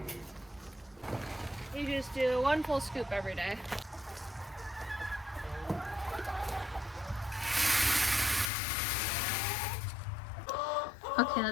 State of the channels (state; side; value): drops out; right; at 8.5 s